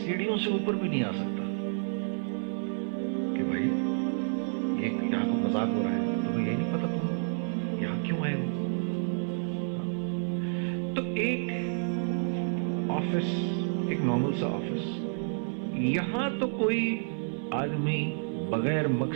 سے اوپر بھی نہیں آ سکتا کہ بھائی یہ یہاں کو مذاق ہو رہا ہے، تمہیں یہی نہیں پتا تم یہاں کیوں آئے ہو؟ تو ایک آفس، ایک نارمل سا آفس، یہاں تو کوئی آدمی بغیر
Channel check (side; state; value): left; silent; digital silence